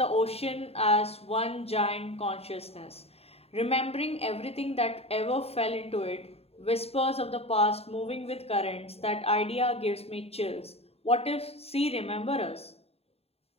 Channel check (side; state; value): right; late; 0.29 ms